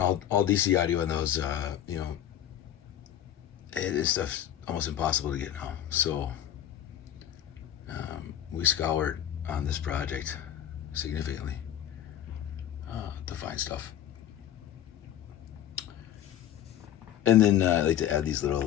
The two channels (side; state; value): right; quieter; 11.2 dB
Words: all DC audio on those, you know, this stuff's almost impossible to get now. So we scoured on this project significantly to find stuff. And then I like to add these